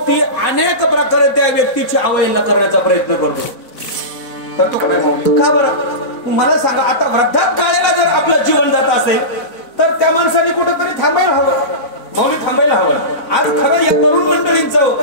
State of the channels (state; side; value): late; right; 4.0 ms